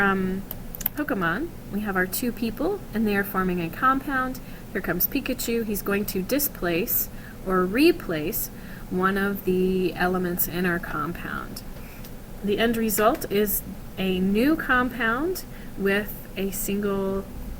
Pokemon, we have our two people and they are forming a compound. Here comes Pikachu. He's going to displace or replace one of the elements in our compound. The end result is a new compound with a single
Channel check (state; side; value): identical; both; correlation 1.00